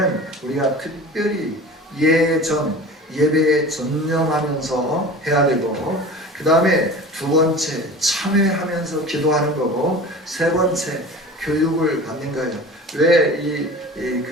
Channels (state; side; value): normal; both; correlation 0.37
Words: 우리가 특별히 예배에 전념하면서 해야 되고 그 다음에 두 번째 참회하면서 기도하는 거고 세 번째 교육을 받는 거예요. 왜